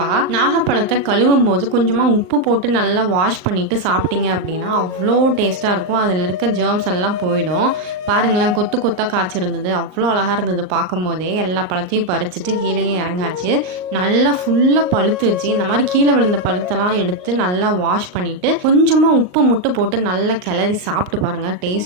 நாகப்பழத்தை கழுவும் போது கொஞ்சமாக உப்பு போட்டு நல்லா வாஷ் பண்ணிவிட்டு சாப்பிட்டீங்க அப்படின்னா அவ்வளோ டேஸ்ட்டாக இருக்கும். அதில் இருக்க ஜேர்ம்ஸ் எல்லாம் போயிடும். பாருங்களேன், கொத்து கொத்தாக காய்ச்சிருந்தது, அவ்வளோ அழகாக இருந்தது. பார்க்கும் போதே எல்லா பழத்தையும் பறிச்சுட்டு கீழே இறங்காச்சு. நல்லா ஃபுல்லாக பழுத்துச்சு. இந்த மாதிரி கீழே விழுந்த பழுத்தெல்லாம் எடுத்து நல்லா வாஷ் பண்ணிட்டு கொஞ்சமாக உப்பு மட்டும் போட்டு நல்லா கிளறி சாப்பிட்டு பாருங்க.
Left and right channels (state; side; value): late; left; 39 ms